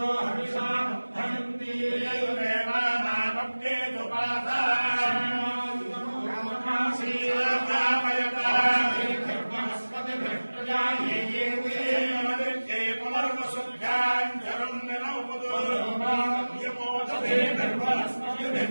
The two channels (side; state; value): both; inverted; correlation -1.00